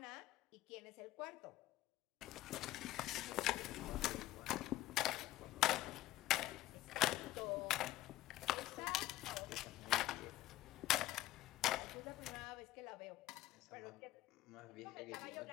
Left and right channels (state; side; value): quieter; right; 15.5 dB